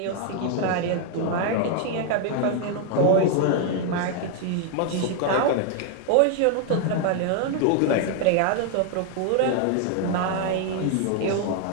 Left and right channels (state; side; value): different; both; correlation 0.00